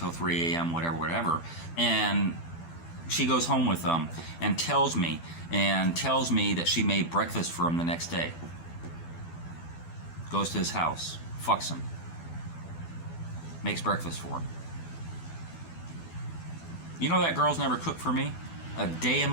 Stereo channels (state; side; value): late; right; 12 ms